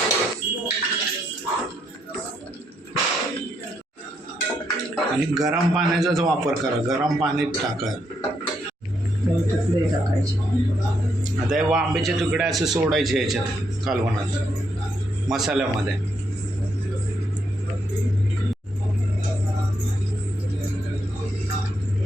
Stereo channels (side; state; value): both; normal; correlation 0.77